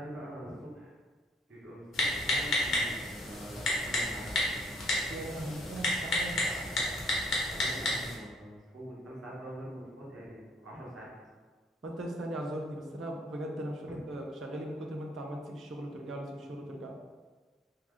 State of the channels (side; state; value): both; normal; correlation 0.63